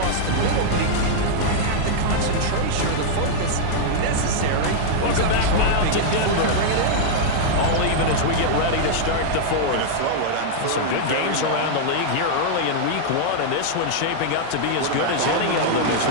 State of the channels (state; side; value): different; both; correlation -0.01